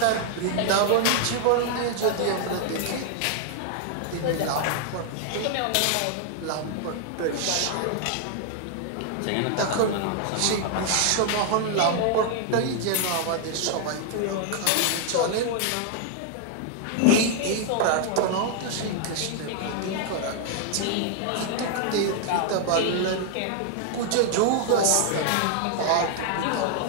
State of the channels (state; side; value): different; both; correlation 0.00